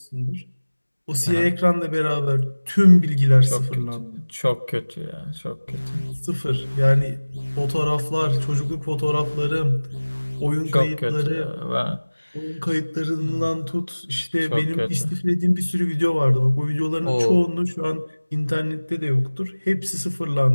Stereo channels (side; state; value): both; inverted; correlation -1.00